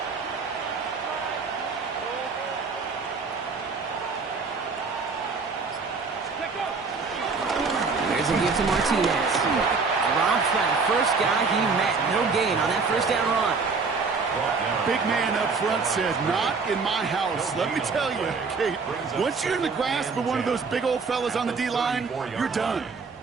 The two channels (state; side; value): quieter; left; 4.7 dB